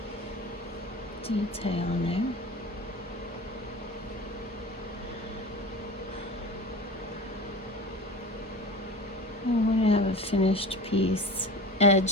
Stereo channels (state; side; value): normal; both; correlation 0.34